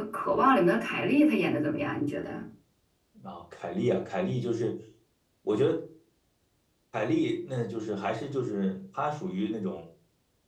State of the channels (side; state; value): both; identical; correlation 1.00